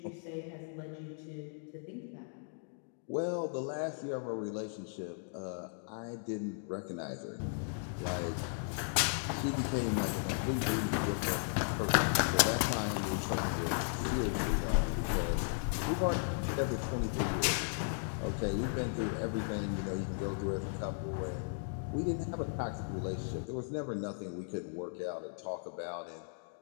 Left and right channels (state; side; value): silent; right; digital silence